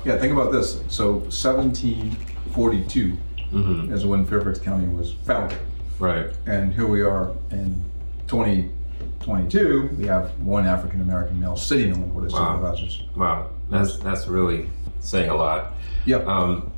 Yeah, think about this. So 1742 is when Fairfax County was founded. Right. And here we are in 2022, we have one African-American male sitting on the Board of Supervisors. Wow, that's really saying a lot. Yeah.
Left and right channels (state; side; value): inverted; both; correlation -1.00